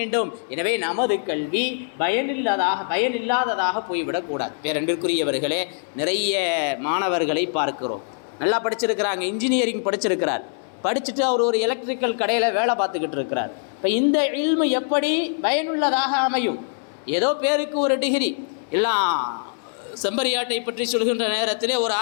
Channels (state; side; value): silent; right; 60 dB below the other